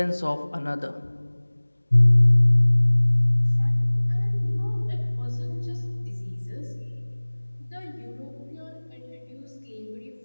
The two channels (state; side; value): inverted; both; correlation -1.00